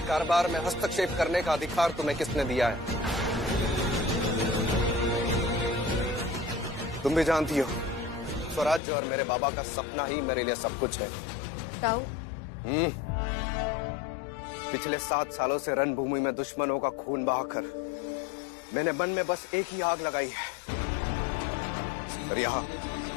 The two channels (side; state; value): right; drops out; at 8.8 s